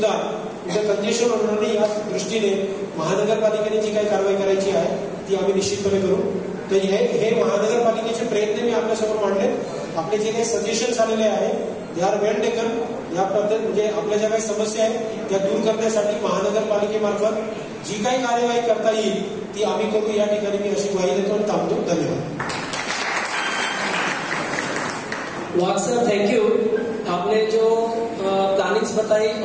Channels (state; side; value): identical; both; correlation 1.00